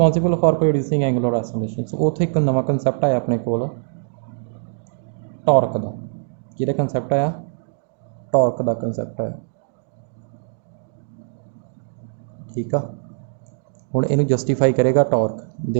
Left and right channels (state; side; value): silent; left; digital silence